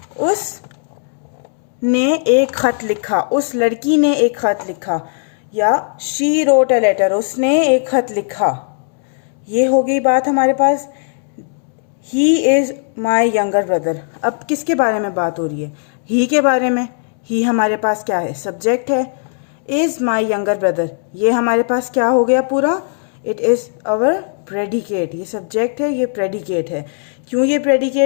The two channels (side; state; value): right; silent; 67 dB below the other